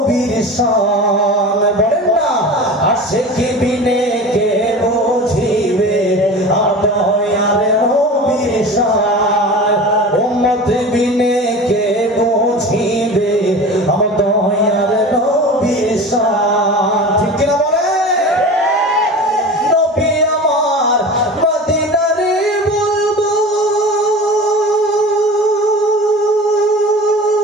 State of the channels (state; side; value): normal; both; correlation 0.34